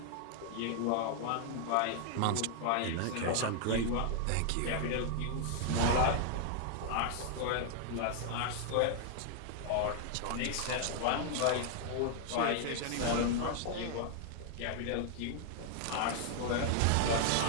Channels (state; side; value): different; both; correlation 0.00